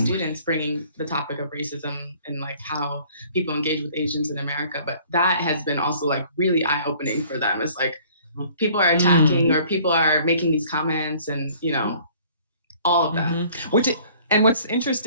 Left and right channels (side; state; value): both; inverted; correlation -0.54